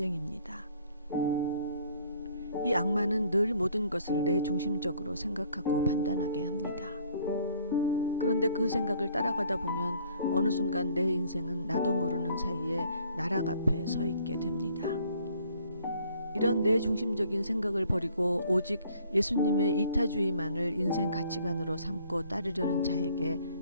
이 악마는 늘 모든 것을 내 중심적으로 생각하고 판단하게 합니다. 그런데 그 생각을 따라가다 보면 어느 순간 내 인생은 나도 모르는 사이에 나락 앞에 서 있게 됩니다. 이런 내 중심적인 생각을 버리고 오직 예수님의 이타주의만을 인생 가치관으로 삼고 따르려는 자에게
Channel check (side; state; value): both; inverted; correlation -0.60